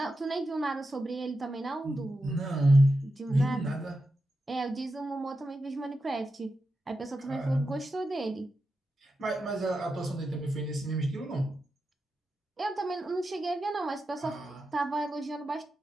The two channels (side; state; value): both; normal; correlation 0.89